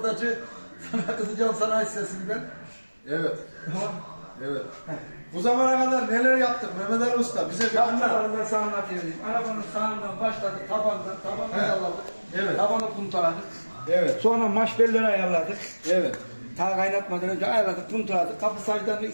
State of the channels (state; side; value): inverted; both; correlation -1.00